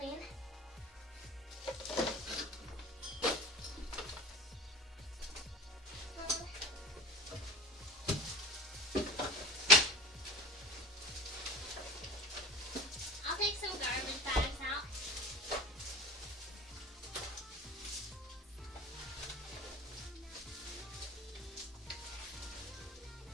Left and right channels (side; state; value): both; normal; correlation 0.34